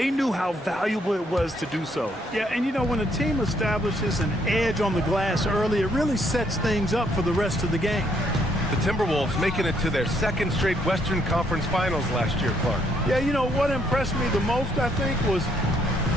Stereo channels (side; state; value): both; normal; correlation 0.70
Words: knew how valuable it was to do so. Yeah, and you know, when a team establishes an edge on the glass early, it really sets things up for the rest of the game. The Timberwolves making it to their second straight Western Conference Finals last year, Clark. Yeah, you know, what impressed me the most, I think, was